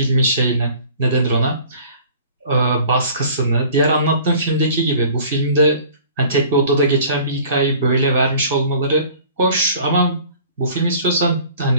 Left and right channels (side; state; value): both; inverted; correlation -0.49